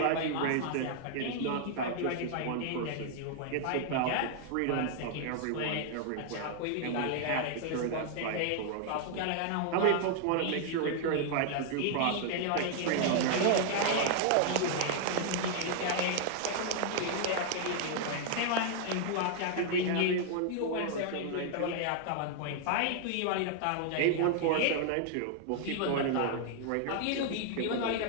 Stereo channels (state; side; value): different; both; correlation 0.00